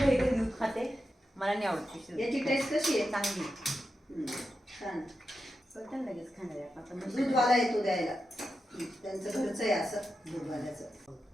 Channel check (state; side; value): normal; both; correlation 0.89